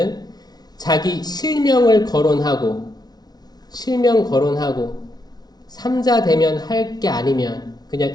자기 실명 거론하고 삼자 되면 할 게 아니면 그냥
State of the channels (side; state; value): right; late; 0.19 ms